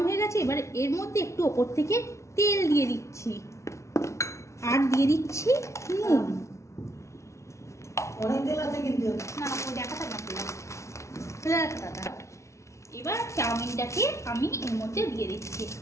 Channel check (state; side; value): late; right; 0.14 ms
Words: হয়ে গেছে, এবার এর মধ্যে একটু ওপর থেকে তেল দিয়ে দিচ্ছি আর দিয়ে দিচ্ছি নুন। অনেক তেল আছে কিন্তু না দেখাটা না। এবার চাউমিনটাকে আমি এর মধ্যে দিয়ে দিচ্ছি।